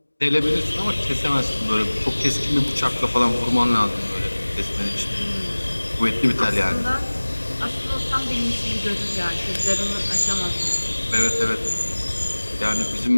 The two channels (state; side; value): inverted; both; correlation -1.00